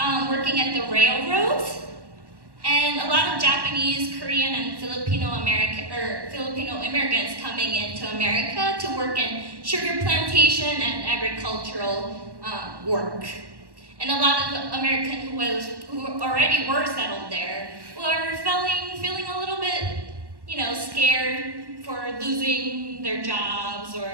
working at the railroads. And a lot of Japanese, Korean, and Filipino immigrants coming into America to work in sugar plantation and agricultural work. And a lot of Americans who already were settled there were feeling a little bit, scared for losing their jobs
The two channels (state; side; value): late; left; 1.1 ms